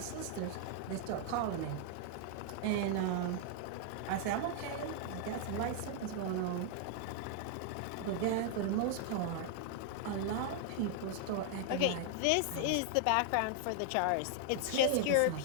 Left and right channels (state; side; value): different; both; correlation 0.00